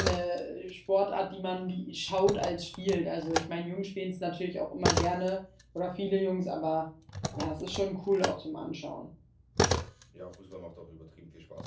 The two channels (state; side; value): identical; both; correlation 1.00